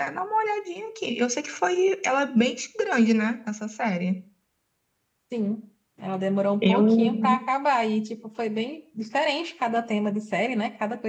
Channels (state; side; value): identical; both; correlation 1.00